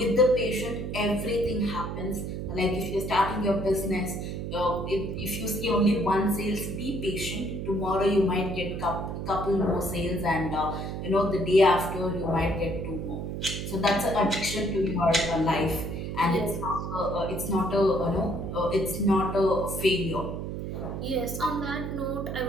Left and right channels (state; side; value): noise; right; hum, 5 dB below the sound